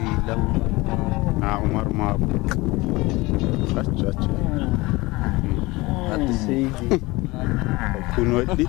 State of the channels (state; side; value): quieter; right; 22.1 dB